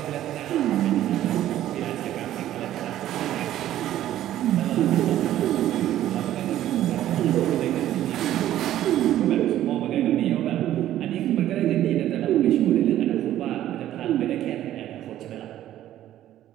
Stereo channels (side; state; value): left; quieter; 12.8 dB